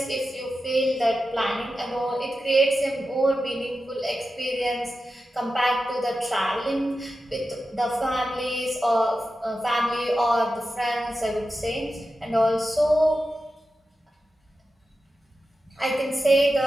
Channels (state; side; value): normal; both; correlation 0.92